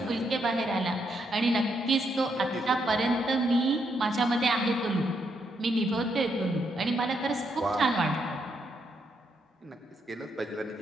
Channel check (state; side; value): normal; both; correlation 0.77